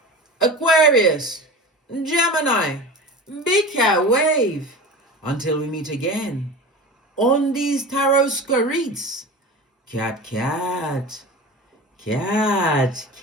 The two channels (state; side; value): normal; both; correlation 0.32